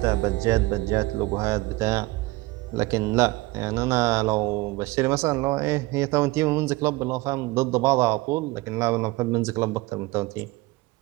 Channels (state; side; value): quieter; left; 21.1 dB